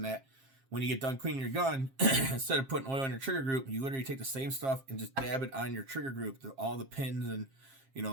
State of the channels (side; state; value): left; late; 7.5 ms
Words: that when you get done cleaning your gun, instead of putting oil on your trigger group, you literally take the same stuff and just dab it on your trigger group. All the pins and,